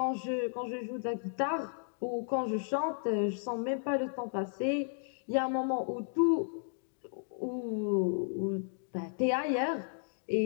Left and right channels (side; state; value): right; silent; digital silence